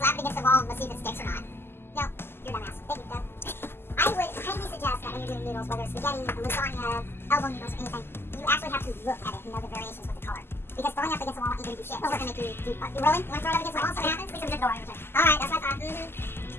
it against the wall and let's see if it sticks or not. No, you're a dumbass. Thank you, Doug. I would highly suggest that when you're doing noodles, whether it's spaghetti, lasagna, elbow noodles, or anything, you actually have to look at it and know the variations with the color. Because throwing up against the wall ain't gonna do shit. It's gonna make you do what? You rolling? You wanna throw it up against the wall and see what happens? We can just go right over. Alright, that's what I thought.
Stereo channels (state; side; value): late; right; 0.11 ms